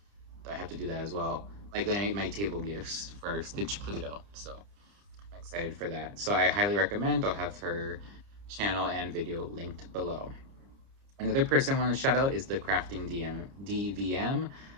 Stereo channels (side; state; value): left; late; 30 ms